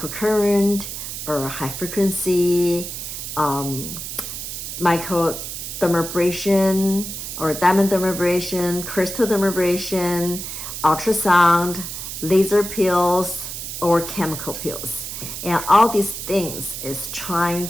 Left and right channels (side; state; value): right; noise; hiss, 7 dB below the sound